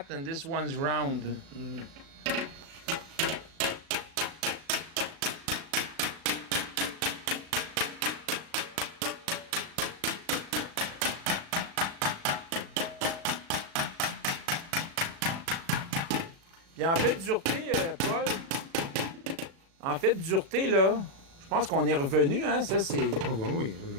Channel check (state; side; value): late; left; 36 ms